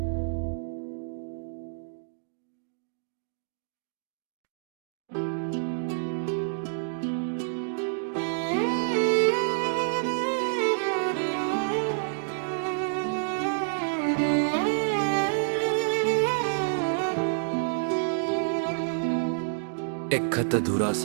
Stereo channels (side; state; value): left; silent; digital silence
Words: एक खत अधूरा